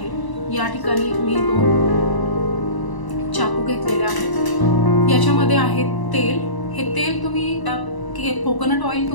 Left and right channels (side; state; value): right; late; 1.0 ms